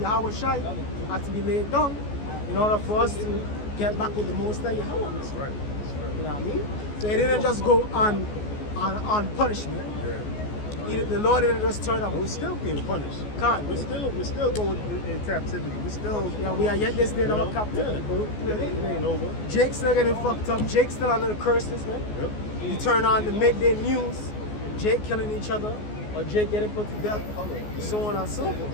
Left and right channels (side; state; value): right; late; 14 ms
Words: Yahweh Shai had to be laid down in order for us to get back with the Most High Yahweh. That's right. You know what I mean? So it didn't just go on punishment. The Lord didn't just turn up. We're still being punished. Can't. We're still going in captivity. We're still. Yeah, we are yet this day in You our know, captivity. yeah. It ain't over. Jake's still getting fucked up. Jake's still under the curses, man. Yep. You turn on the midday news, Jake killing each other, or Jake getting put to death, so on and so